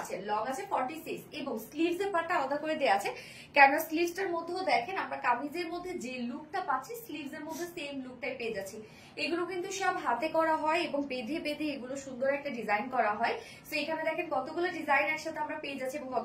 লং আছে 46 এবং স্লিভস এর পার্টটা আলাদা করে দেওয়া আছে। কেন স্লিভসটার মধ্যেও দেখেন আমরা কামিজের মধ্যে যে লুকটা পাচ্ছি স্লিভস এর মধ্যে সেম লুকটাই পেয়ে যাচ্ছি। এগুলো কিন্তু সব হাতে করা হয় এবং বেঁধে বেঁধে এগুলো সুন্দর একটা ডিজাইন করা হয়। সো এখানে দেখেন কতগুলো ডিজাইন একসাথে আমরা পেয়ে যাচ্ছি এবং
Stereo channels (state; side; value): identical; both; correlation 1.00